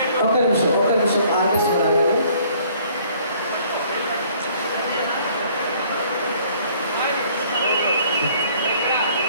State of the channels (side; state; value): both; inverted; correlation -0.59